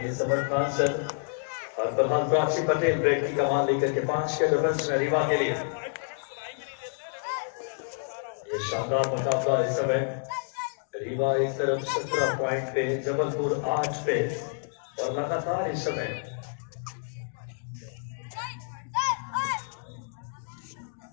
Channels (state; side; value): silent; right; digital silence